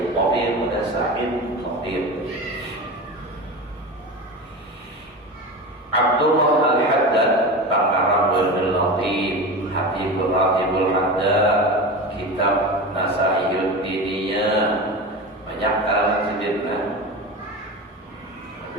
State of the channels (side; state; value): both; normal; correlation 0.27